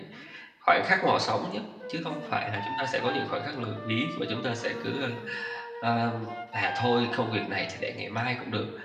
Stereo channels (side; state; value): both; identical; correlation 1.00